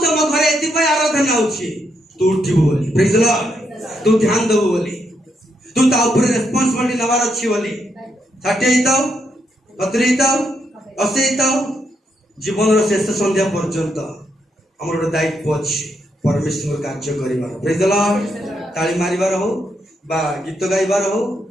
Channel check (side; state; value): both; normal; correlation 0.79